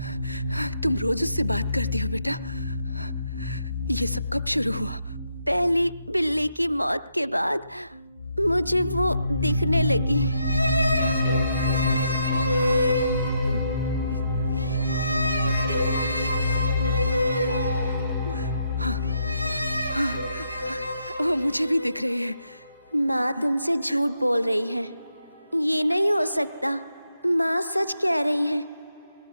तुम रोज उससे बात करती हो बेटा? ये सब कब शुरू हुआ? पहली बिल्ली की मौत के बाद मुझे वो दिखने लगी। वो मुझे भी दिख रही है। माँ तुमसे झूठ बोल रही है, ये नहीं हो सकता। माँ सच कह रही है।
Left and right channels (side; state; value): both; inverted; correlation -0.79